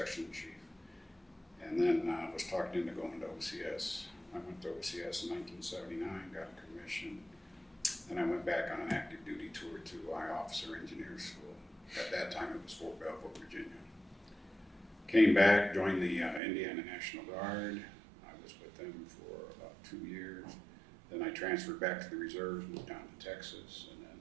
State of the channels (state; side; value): drops out; left; at 16.4 s